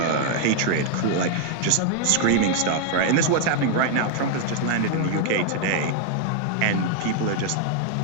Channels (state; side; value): different; both; correlation 0.00